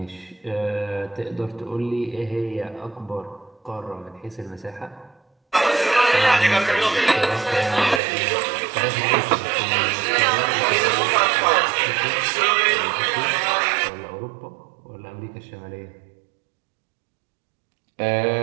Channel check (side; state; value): left; drops out; at 8.0 s